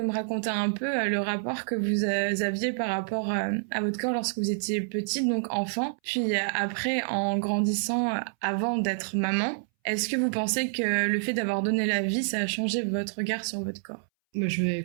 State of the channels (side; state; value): left; silent; 59 dB below the other